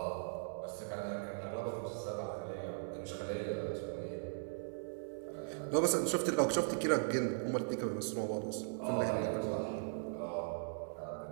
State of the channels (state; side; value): silent; left; 52 dB below the other